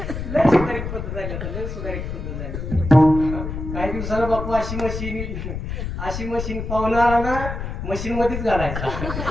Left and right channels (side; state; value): left; noise; rumble, 5 dB below the sound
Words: लय सुधारित पद्धत झाली आता लय सुधारित पद्धत झाली काही दिवसाला बापू अशी मशीन पाहुणा आला ना मशीन मध्येच घालायचा